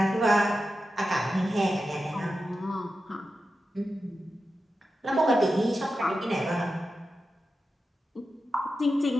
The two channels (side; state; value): both; normal; correlation 0.91